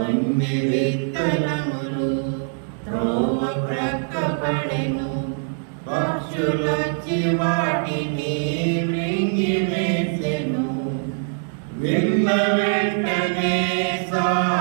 విత్తనములు త్రోవ ప్రక్క పడెను, పక్షులొచ్చి వాటిని మృంగివేసెను. విన్న వెంటనే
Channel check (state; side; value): silent; left; digital silence